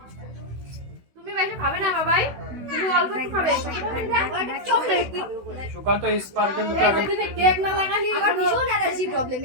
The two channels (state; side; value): late; left; 16 ms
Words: তুমি বেশি খাবে না বাবাই তুমি অল্প একটু খাবে চকলেট সুকান্ত স্পার্কেল দুটো আগে দিনে কেক না লাগালি আমার ভীষণ অ্যালার্জি প্রবলেম